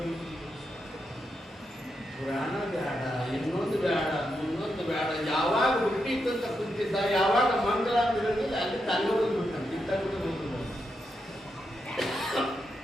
ಪುರಾಣ ಬೇಡ, ಇನ್ನೊಂದು ಬೇಡ, ಇನ್ನೊಂದು ಬೇಡ. ಯಾವಾಗ ಹುಟ್ಟಿತ್ತಂತ ಕುಂತಿದ್ದ, ಯಾವಾಗ ಮಂಗಲ ಅಂತ ಹೇಳಿದ್ರೆ ಅಲ್ಲಿ ತಂಗ ಹೋಗ್ಬಿಟ್ಟ ಕಿತ್ತಾಗ್ಬಿಟ್ಟು ಹೋಗ್ಬಿಟ್ಟ.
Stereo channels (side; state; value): both; normal; correlation 0.84